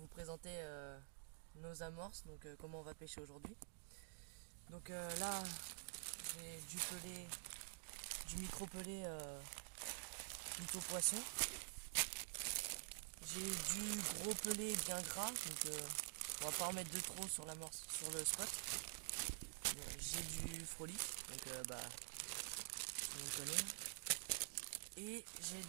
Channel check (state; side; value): silent; left; digital silence